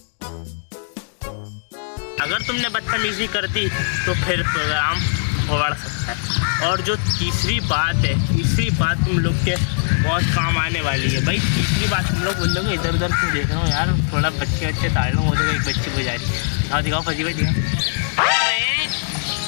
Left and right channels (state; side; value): silent; right; digital silence